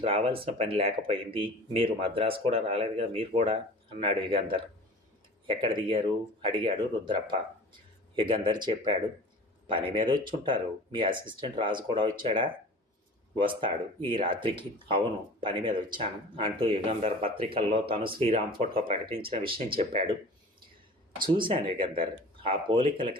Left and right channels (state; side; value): normal; both; correlation 0.41